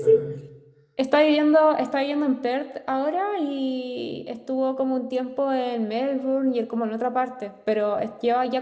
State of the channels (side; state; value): both; identical; correlation 1.00